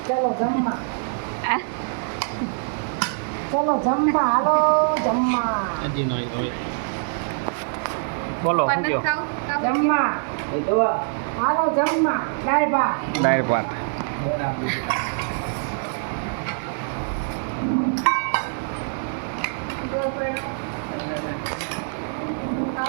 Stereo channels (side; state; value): left; silent; digital silence